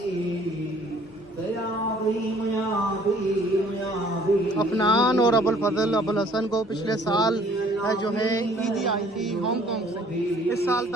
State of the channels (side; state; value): both; normal; correlation 0.57